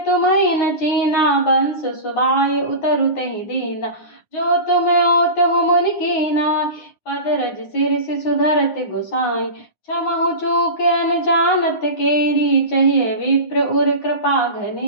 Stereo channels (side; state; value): right; late; 9.7 ms